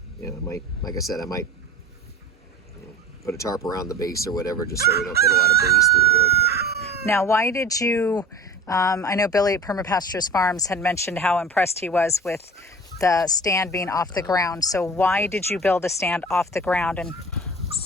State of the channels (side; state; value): both; normal; correlation 0.38